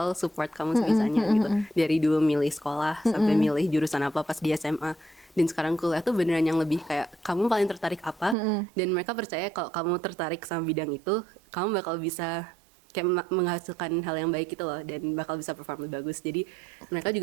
support kamu sebisanya gitu. Dari dulu milih sekolah sampai milih jurusan apa pas di SMA. Dan sekarang kuliah tuh beneran yang lebih kayak kamu paling tertarik apa, dan mereka percaya kalau kamu tertarik sama bidang itu, kamu bakal bisa kayak menghasilkan hal yang baik gitu loh, dan bakal bisa perform lebih bagus. Jadi mereka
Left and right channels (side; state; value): left; drops out; at 8.3 s